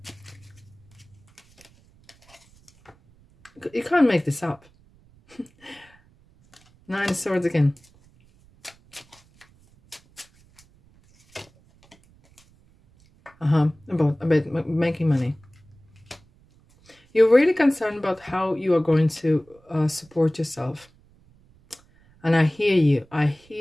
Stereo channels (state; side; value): noise; right; rumble, 30 dB below the sound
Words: You can't make this up. 9 of Swords again. About making money. You're really concerned about how you are going to support yourself. And I hear you. I